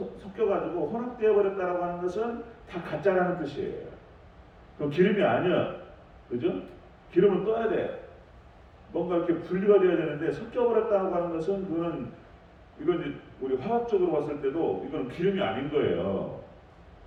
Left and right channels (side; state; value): both; identical; correlation 1.00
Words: 혼합되어 버렸다라고 하는 것은 다 가짜라는 뜻이에요. 그럼 기름이 아니야, 그죠? 기름은 떠야 돼. 뭔가 이렇게 분리가 돼야 되는데 섞여버렸다고 하는 것은 이건 이제 우리 화학적으로 봤을 때도 이건 기름이 아닌 거예요.